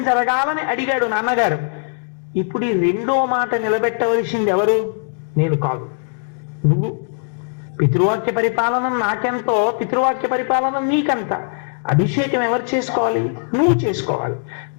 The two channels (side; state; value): right; silent; 61 dB below the other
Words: జరగాలని అడిగాడు నాన్నగారు. ఇప్పుడు ఈ రెండో మాట నిలబెట్టవలసింది ఎవరు? నేను కాదు, నువ్వు. పితృవాక్య పరిపాలన నాకెంతో, పితృవాక్య పరిపాలన నీకంత. అభిషేకం ఎవరు చేసుకోవాలి? నువ్వు చేసుకోవాలి.